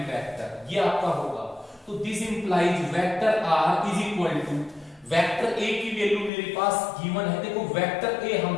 vector, ये आपका होगा। तो this implies vector r is equal to vector a की वैल्यू मेरे पास गिवन है। देखो वेक्टर a हम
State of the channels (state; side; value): drops out; right; at 6.3 s